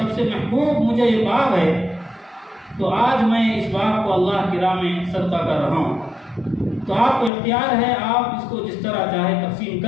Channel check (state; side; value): drops out; right; at 7.3 s